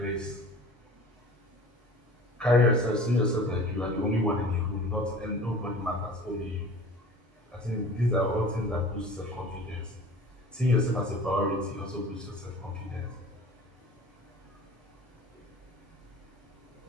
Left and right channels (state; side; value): normal; both; correlation 0.42